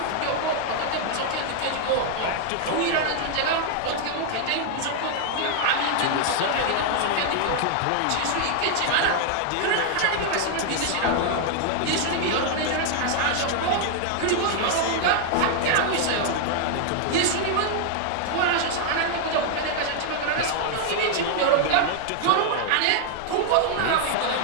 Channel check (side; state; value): both; different; correlation 0.00